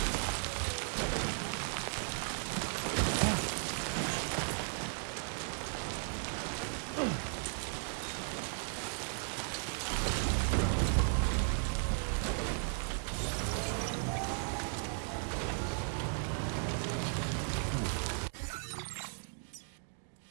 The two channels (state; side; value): silent; left; 54 dB below the other